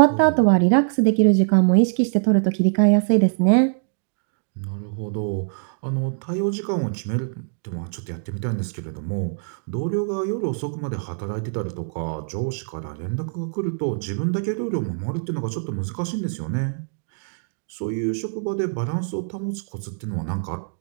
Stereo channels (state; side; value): silent; left; digital silence